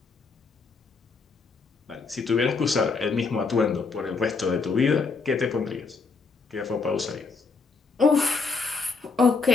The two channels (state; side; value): quieter; right; 4.5 dB